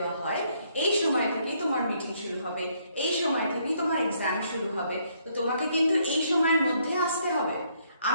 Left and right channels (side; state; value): both; inverted; correlation -0.70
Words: হয় এই সময় থেকেই তোমার মিটিং শুরু হবে, এই সময় থেকেই তোমার এক্সাম শুরু হবে, তো তোমাকে কিন্তু এই সময়ের মধ্যে আসতে হবে।